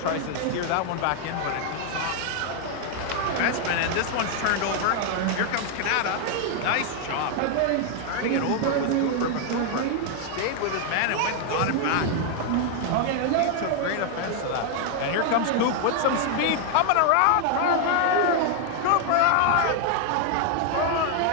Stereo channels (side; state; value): both; different; correlation 0.00